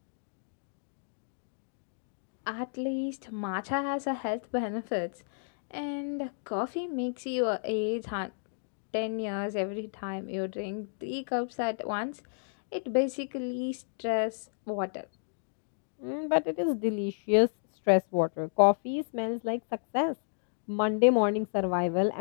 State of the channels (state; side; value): silent; right; digital silence